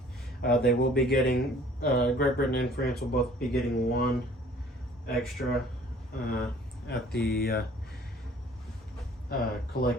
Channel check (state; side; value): normal; both; correlation 0.53